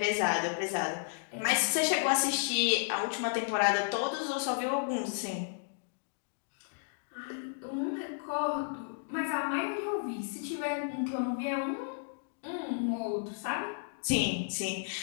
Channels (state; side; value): silent; right; digital silence